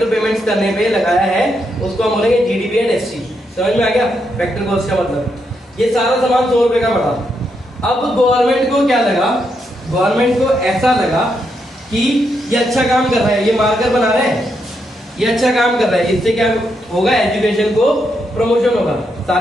पेमेंट्स करने पे लगाया है उसको हम बोलेंगे जीडीपी एट एससी। समझ में आ गया? फैक्टर कॉस्ट का मतलब ये सारा सामान 100 रुपए का पड़ा। अब गवर्नमेंट को क्या लगा, गवर्नमेंट को ऐसा लगा कि ये अच्छा काम कर रहा है, ये मार्कर बना रहे हैं, ये अच्छा काम कर रहा है, इससे क्या होगा, एजुकेशन को प्रमोशन होगा,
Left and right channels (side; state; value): both; normal; correlation 0.80